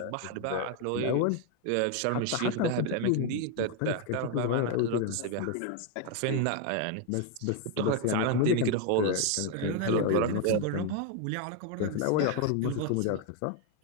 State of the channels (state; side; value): different; both; correlation 0.01